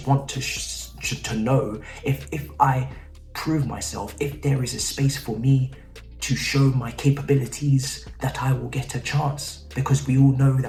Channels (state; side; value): identical; both; correlation 1.00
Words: want to know if I prove myself, if there is a space for me to show my capabilities, that I will get a chance. Because we all know